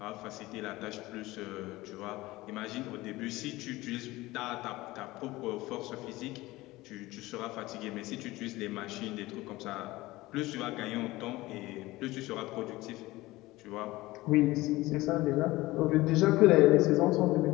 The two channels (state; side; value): quieter; right; 19.1 dB